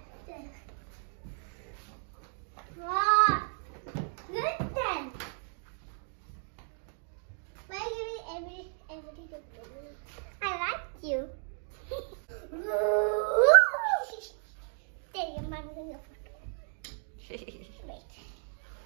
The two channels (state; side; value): silent; left; 55 dB below the other